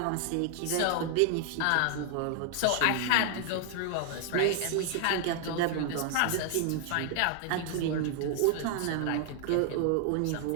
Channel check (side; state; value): both; different; correlation 0.00